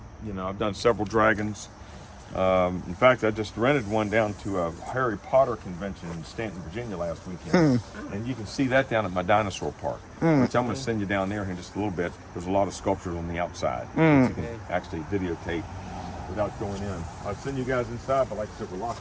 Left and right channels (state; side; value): identical; both; correlation 1.00